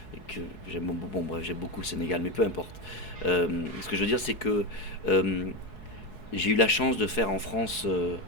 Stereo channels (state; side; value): late; right; 4.8 ms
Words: que j'aime beaucoup. Bon, bref, j'aime beaucoup le Sénégal, mais peu importe. Ce que je veux dire, c'est que j'ai eu la chance de faire en France